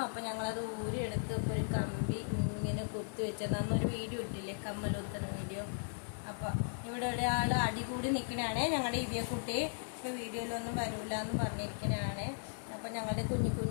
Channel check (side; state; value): right; silent; digital silence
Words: അപ്പം ഞങ്ങളത് ഊരിയെടുത്ത് ഇപ്പോൾ ഒരു കമ്പി ഇങ്ങനെ കുത്തി വെച്ചത്. അന്നൊരു വീഡിയോ ഇട്ടില്ലേ, കമ്മൽ കുത്തുന്ന വീഡിയോ. അപ്പം ഇവിടെ ഒരാൾ അടി കൂടി നിൽക്കണാണ് ഞങ്ങളുടെ ഇതേ കുട്ടി. ഇപ്പോൾ വീഡിയോയിലൊന്നും വരില്ല എന്ന് പറഞ്ഞിരിക്കണാണ്. അപ്പം ഞങ്ങളുടെ കുഞ്ഞു